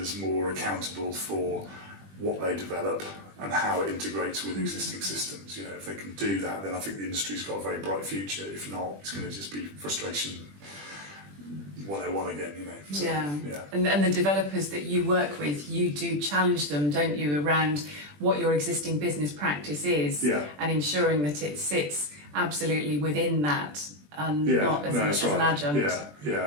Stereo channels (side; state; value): left; late; 20 ms